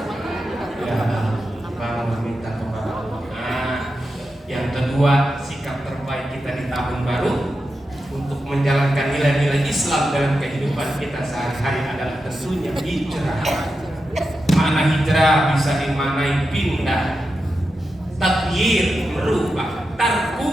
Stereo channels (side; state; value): both; normal; correlation 0.89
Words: Ya, bangun minta kepada Allah. Nah, yang kedua, sikap terbaik kita di tahun menjalankan nilai-nilai Islam dalam kehidupan kita sehari-hari adalah tentunya hijrah. Makna hijrah bisa dimaknai pindah, tagyir merubah,